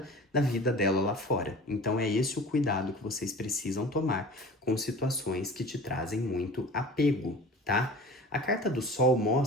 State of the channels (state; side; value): normal; both; correlation 0.40